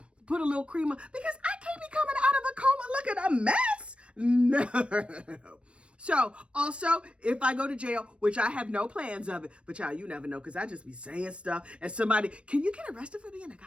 put a little cream on because I can't be coming out of a coma looking a mess. No. So also, if I go to jail, which I have no plans of it, but y'all, you never know because I just be saying stuff and somebody, can you get arrested for being a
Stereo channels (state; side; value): late; left; 0.059 ms